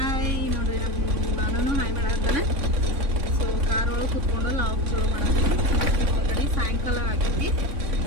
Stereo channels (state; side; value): late; left; 3.6 ms